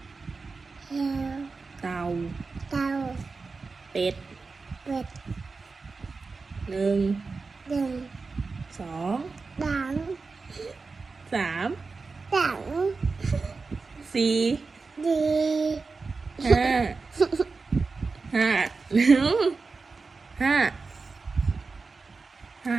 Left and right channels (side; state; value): left; quieter; 4.3 dB